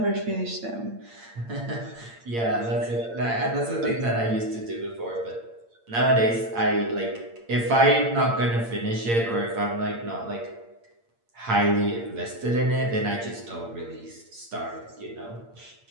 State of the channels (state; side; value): late; left; 8.7 ms